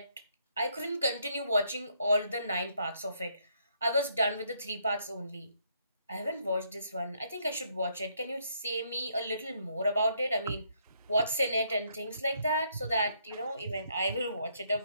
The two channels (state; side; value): inverted; both; correlation -0.71